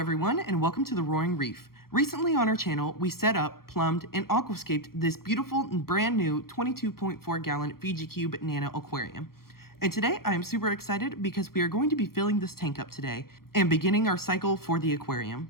and welcome to the Roaring Reef. Recently on our channel, we set up, plumbed, and aquascaped this beautiful and brand new 22.4 gallon FijiCube Nano aquarium. And today I am super excited because we are going to be filling this tank up today and beginning our cycle for the aquarium.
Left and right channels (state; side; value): late; right; 0.93 ms